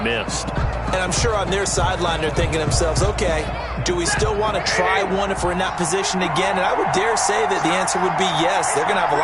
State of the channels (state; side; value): identical; both; correlation 1.00